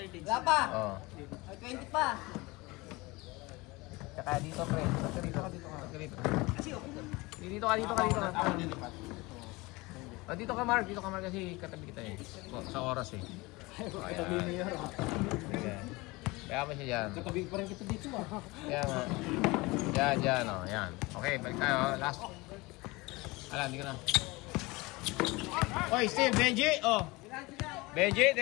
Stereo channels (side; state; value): right; quieter; 23.1 dB